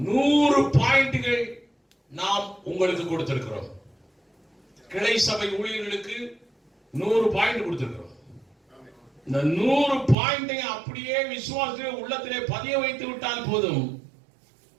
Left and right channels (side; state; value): left; drops out; at 10.2 s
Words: பாயிண்ட்கள் நாம் உங்களுக்கு கொடுத்திருக்கிறோம். கிளை சபை ஊழியர்களுக்கு 100 பாயிண்ட் கொடுத்திருக்கிறோம். இந்த 100 பாயிண்டை அப்படியே விசுவாசத்திலே உள்ளத்திலே பதிய வைத்து விட்டால் போதும்,